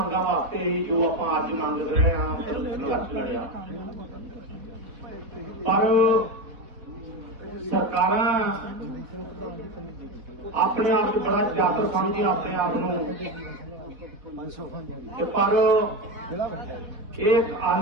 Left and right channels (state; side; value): late; left; 4.2 ms